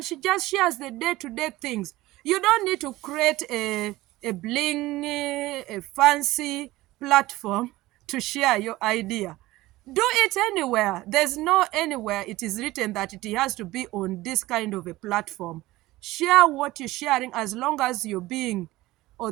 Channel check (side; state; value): left; quieter; 18.1 dB